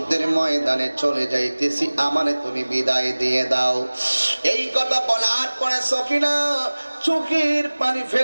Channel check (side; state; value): both; inverted; correlation -1.00